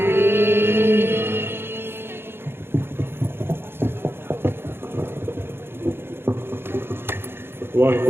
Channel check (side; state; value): left; late; 0.11 ms